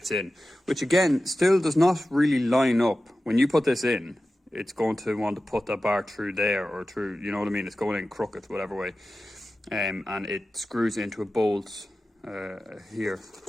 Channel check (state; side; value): normal; both; correlation 0.94